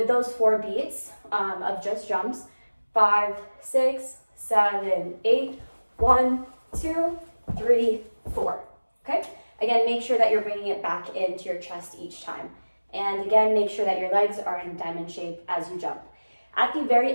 those 4 beats of just jumps, 5, 6, 7, 8, 1, 2, 3, 4. Okay, again, make sure that you're bringing it back into your chest each time. And again, make sure that your legs are in diamond shape as you jump. At the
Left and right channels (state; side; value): inverted; both; correlation -1.00